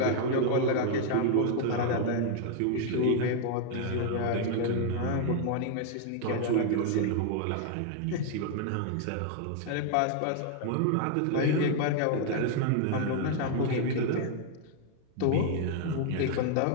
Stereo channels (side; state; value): both; different; correlation 0.00